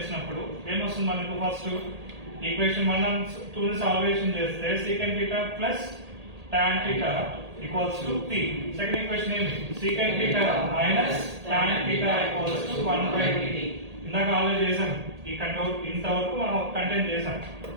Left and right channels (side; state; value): left; late; 1.8 ms